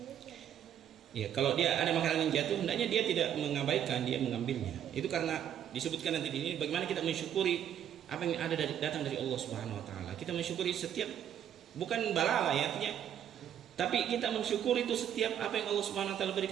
Ya, kalau dia ada makanan yang jatuh, hendaknya dia tidak mengabaikan, dia mengambilnya. Itu karena disebutkan nanti di ini bagaimana kita mensyukuri apa yang ada datang dari Allah Subhanahu Wa Taala. Kita mensyukuri setiap, bukan balala ya artinya, tapi kita mensyukuri itu setiap apa yang Allah Subhanahu Wa Taala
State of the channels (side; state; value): left; quieter; 9.9 dB